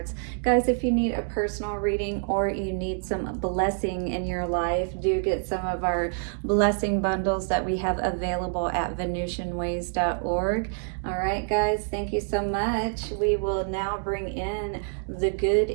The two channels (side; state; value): left; silent; digital silence